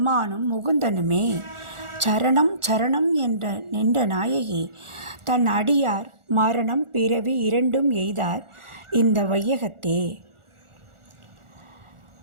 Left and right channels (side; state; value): left; late; 1.4 ms